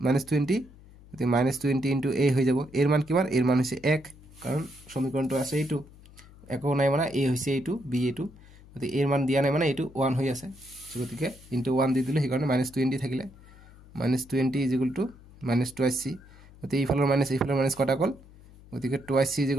মাইনাস 20 গতি মাইনাস 20 * a হৈ যাব এৰ মান কিমান এৰ মান হৈছে 1 কাৰণ সমীকৰণটো আছে এইটো একো নাই মানে a হৈছে এইটো b এইটো গতি এর মান দিয়া নাই মানে এইটো 1 হৈ আছে গতিকে * 1 দি দিলে হেকাৰণে মাইনাস 20 থাকিলে minus 20 is equal two minus 2c গতি ইফালৰ মাইনাস কটা গল গতিকে 2c ইজ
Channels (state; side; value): noise; left; hum, 22 dB below the sound